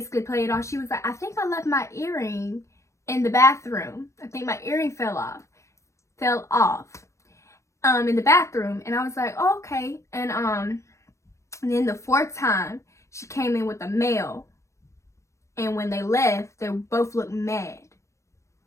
play it off. She was like, I think I left my earring in the bathroom. I think my earring fell off in the bathroom. And I was like, oh, okay. And then the fourth time she came in with a male, and when they left, they both looked mad.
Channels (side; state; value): right; late; 0.14 ms